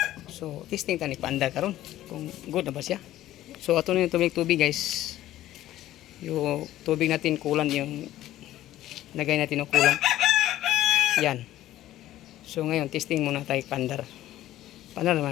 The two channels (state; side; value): quieter; right; 14.1 dB